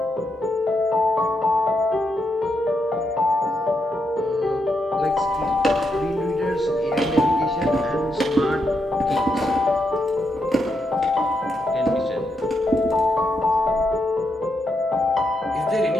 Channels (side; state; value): both; normal; correlation 0.81